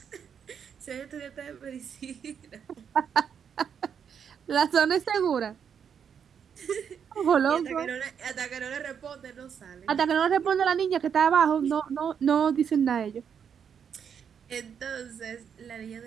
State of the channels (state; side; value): quieter; left; 7.6 dB